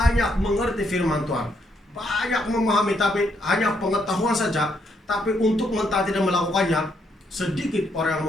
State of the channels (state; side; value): normal; both; correlation 0.75